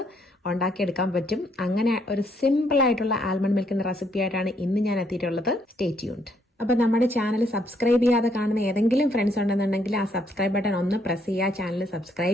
ഉണ്ടാക്കിയെടുക്കാൻ പറ്റും. അങ്ങനെ ഒരു സിമ്പിൾ ആയിട്ടുള്ള ആൽമണ്ട് മിൽക്കിന്റെ റെസിപ്പി ആയിട്ടാണ് ഇന്ന് ഞാൻ എത്തിയിട്ടുള്ളത്. Stay tuned. അപ്പൊ നമ്മുടെ ചാനൽ സബ്സ്ക്രൈബ് ചെയ്യാതെ കാണുന്ന ഏതെങ്കിലും ഫ്രണ്ട്സ് ഉണ്ടെന്നുണ്ടെങ്കിൽ ആ സബ്സ്ക്രൈബ് ബട്ടൺ ഒന്ന് പ്രസ് ചെയ്യുക, ചാനൽ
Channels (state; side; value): normal; both; correlation 0.71